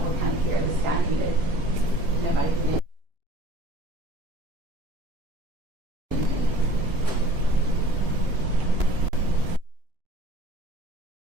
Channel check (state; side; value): late; left; 2.9 ms